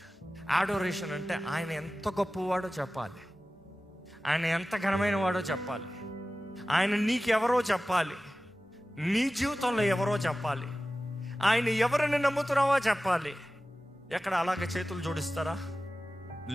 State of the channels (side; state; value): both; normal; correlation 0.95